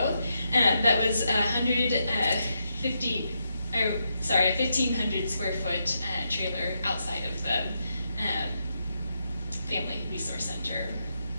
That was a 1,500 square foot trailer outside of the Family Resource Center.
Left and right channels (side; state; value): both; inverted; correlation -0.82